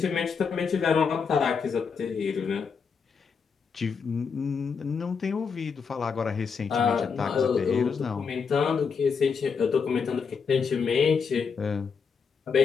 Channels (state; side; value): quieter; right; 5.8 dB